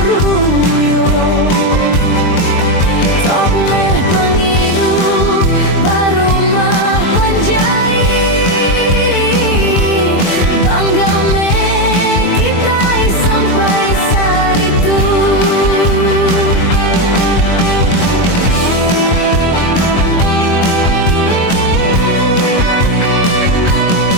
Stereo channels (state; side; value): late; right; 23 ms